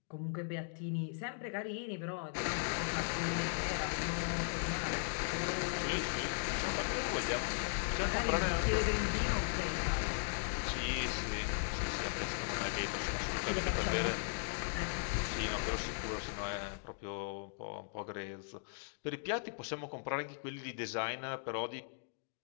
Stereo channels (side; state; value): right; silent; digital silence